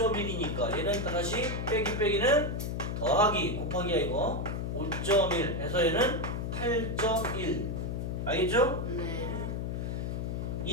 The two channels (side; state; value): left; noise; hum, 2 dB below the sound